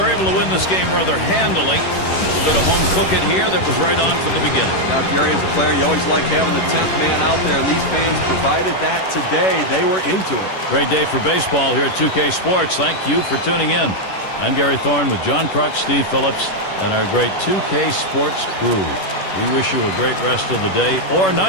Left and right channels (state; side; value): late; right; 11 ms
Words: able to win this game rather handily. A bit of home cooking here that was right on from the beginning. Now, Gary, as a player, you always like having the 10th man out there, and these fans provided that today. They were into it. Great day for baseball here at 2K Sports. Thank you for tuning in. I'm Gary Thorne with John Kruk, Steve Phillips, and our great 2K Sports crew. We wish you a great rest of the day or